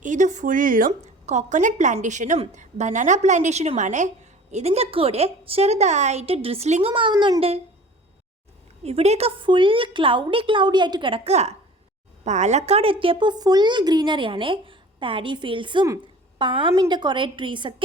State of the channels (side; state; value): both; normal; correlation 0.44